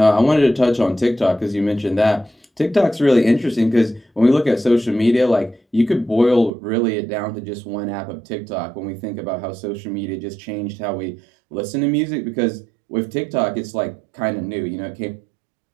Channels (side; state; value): left; drops out; at 6.5 s